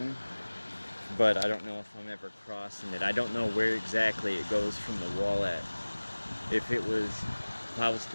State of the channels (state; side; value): inverted; both; correlation -1.00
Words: But I don't know if I'm ever crossing it. I don't know where exactly it goes from the wall at. If I was